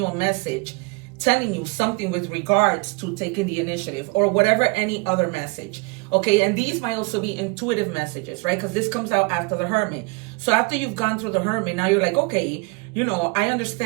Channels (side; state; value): left; quieter; 29.2 dB